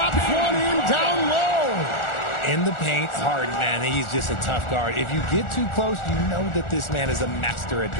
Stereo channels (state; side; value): late; right; 1.4 ms